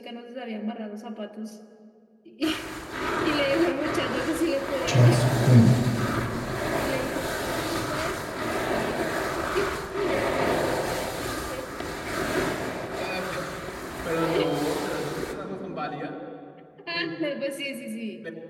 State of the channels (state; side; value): identical; both; correlation 1.00